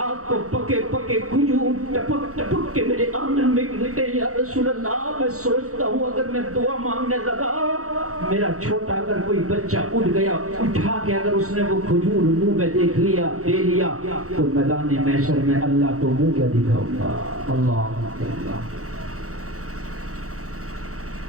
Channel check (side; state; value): left; late; 0.65 ms